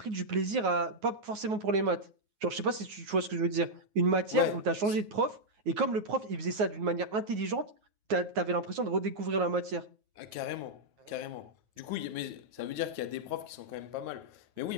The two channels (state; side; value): late; left; 9.4 ms